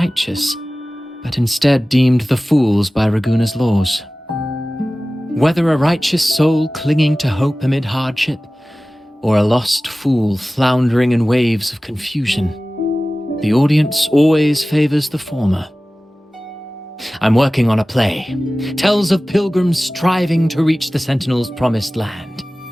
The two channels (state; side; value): normal; both; correlation 0.97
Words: but instead deemed the fools by Raguna's laws. Whether a righteous soul clinging to hope amid hardship, or a lost fool floundering in waves of confusion, the audience always favors the former. I'm working on a play. Tells of pilgrims striving to reach the Sentinel's promised land.